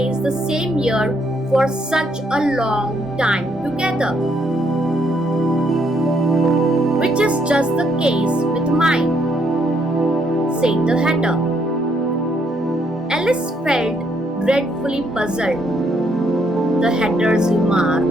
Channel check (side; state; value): both; normal; correlation 0.72